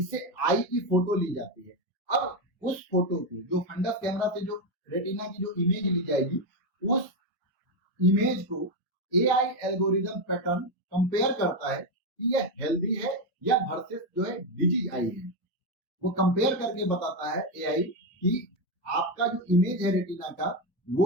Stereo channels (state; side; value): normal; both; correlation 0.08